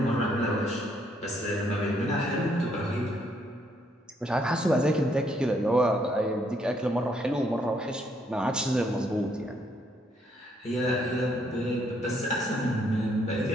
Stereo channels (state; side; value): normal; both; correlation 0.71